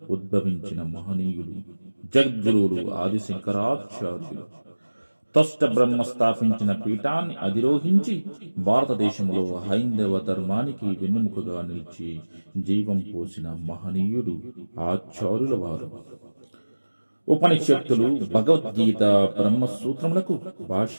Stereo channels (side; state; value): both; inverted; correlation -1.00